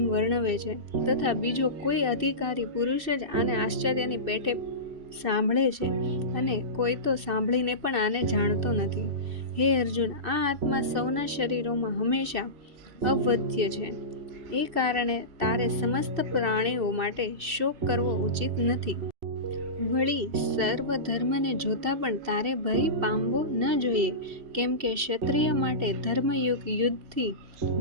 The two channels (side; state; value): left; late; 3.0 ms